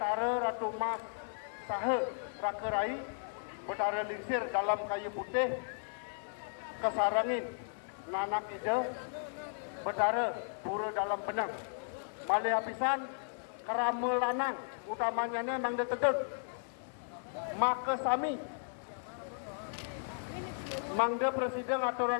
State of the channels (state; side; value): silent; right; digital silence